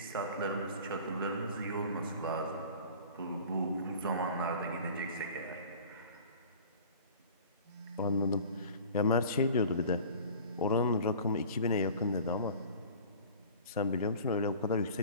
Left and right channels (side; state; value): both; inverted; correlation -0.43